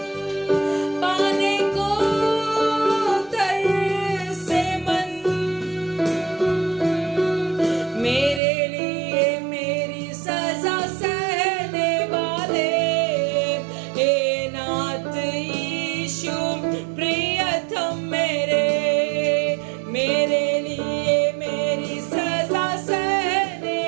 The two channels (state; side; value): drops out; left; at 8.4 s